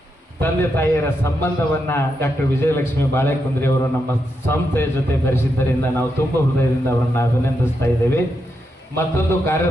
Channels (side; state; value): both; normal; correlation 0.84